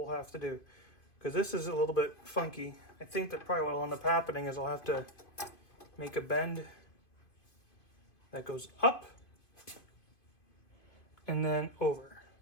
have to do. Because this is a little bit funky. I think that probably what will end up happening is I'll have to make a bend that goes up and then over.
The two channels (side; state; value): right; late; 2.5 ms